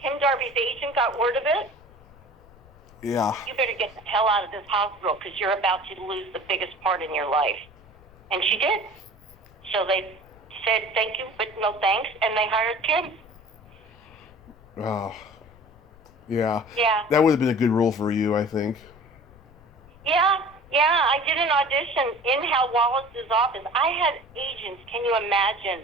Darby's agent got word of it, yeah, you better get the hell out of this hospital because you're about to lose the biggest part in your life. And she did. So they said, thank you, but no thanks, and they hired Kim. Oh, yeah. Yeah. That would have been a good role for you, I think. Yeah. I did an audition in Hal Wallace's office. I had agents, can you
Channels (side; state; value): left; noise; rumble, 25 dB below the sound